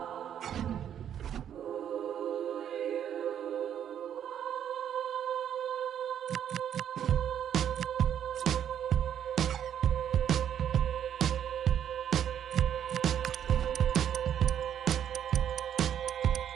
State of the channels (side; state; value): left; quieter; 9.5 dB